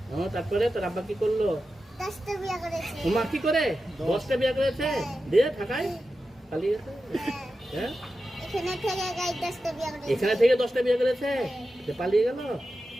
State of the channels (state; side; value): normal; both; correlation 0.92